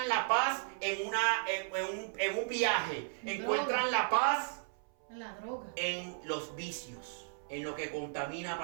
la paz en un viaje, encuentran la paz La droga. en los vicios, en lo que contamina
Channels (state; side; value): silent; left; 54 dB below the other